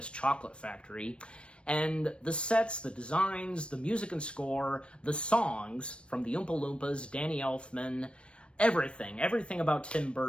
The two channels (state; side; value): late; right; 0.059 ms